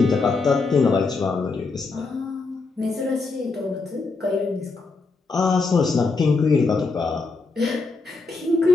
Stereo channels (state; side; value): quieter; right; 4.0 dB